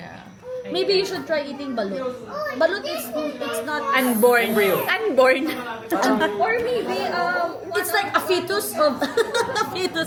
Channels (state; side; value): identical; both; correlation 1.00